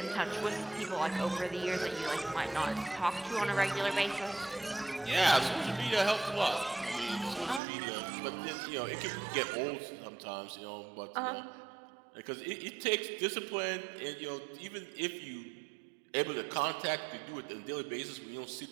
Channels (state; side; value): drops out; left; at 7.6 s